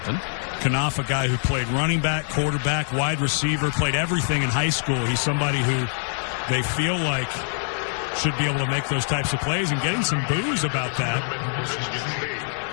Knopf, a guy who played running back, quarterback, wide receiver, played everything in high school. He's somebody who they feel like should be able to make those types of plays, and getting some boos about that.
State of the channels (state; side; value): silent; right; 56 dB below the other